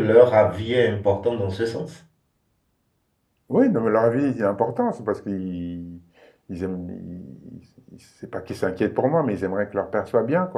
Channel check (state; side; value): identical; both; correlation 1.00